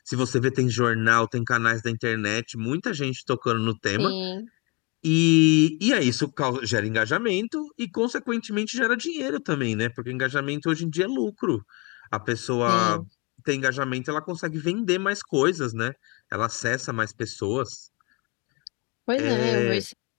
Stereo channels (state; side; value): quieter; right; 28.6 dB